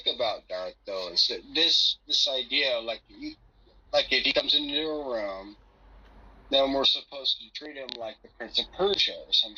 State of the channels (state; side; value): identical; both; correlation 1.00